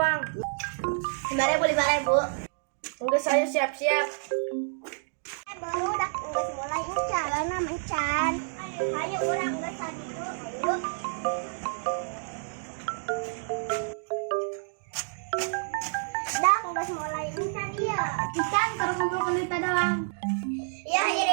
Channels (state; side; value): silent; left; digital silence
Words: 5.000. Enggak saya siap-siap. Baru dak geus mulai jalan mencan. Ayo urang geus saditu. Ayo. Dak geus mulai mencan ieu. Ikan terus ngumpulkeun duit doang. Iya,